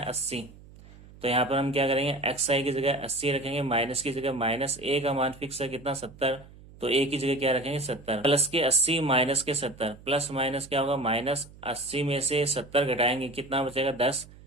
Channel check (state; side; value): noise; right; hum, 21 dB below the sound